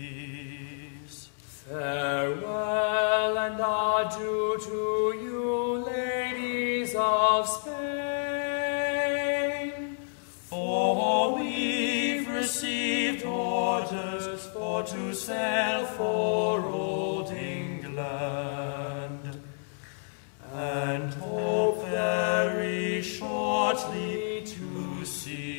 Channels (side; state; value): right; silent; 58 dB below the other